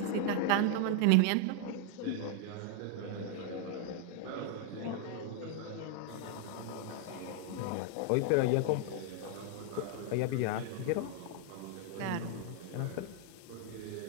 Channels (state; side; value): different; both; correlation 0.00